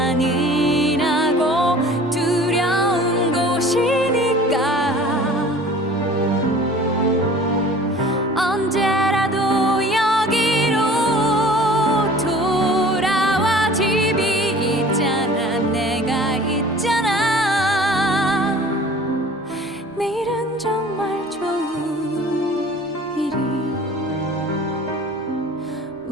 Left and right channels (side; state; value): both; normal; correlation 0.46